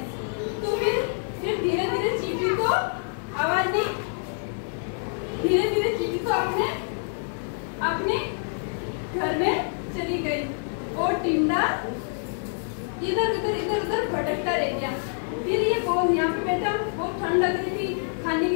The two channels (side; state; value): right; silent; 57 dB below the other